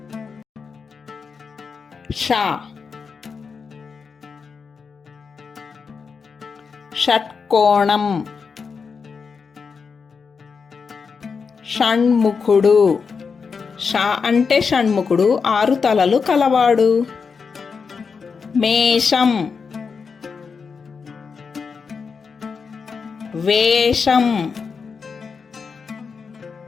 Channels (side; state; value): right; quieter; 5.5 dB